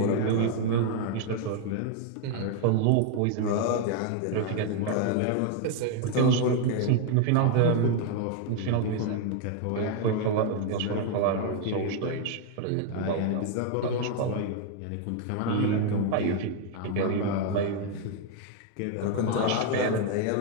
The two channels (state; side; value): different; both; correlation 0.01